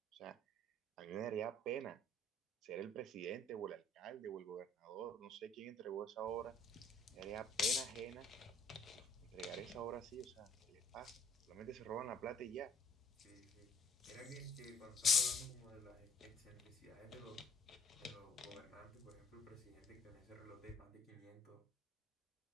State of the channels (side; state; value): both; normal; correlation 0.59